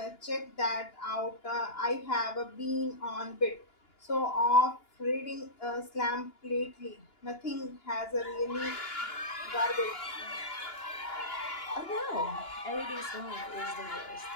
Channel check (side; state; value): right; late; 2.9 ms